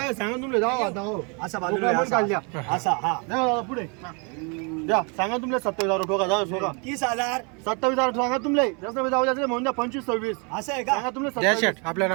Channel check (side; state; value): left; quieter; 33.9 dB